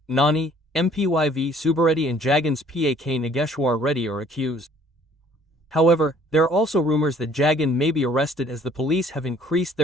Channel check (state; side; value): normal; both; correlation 0.57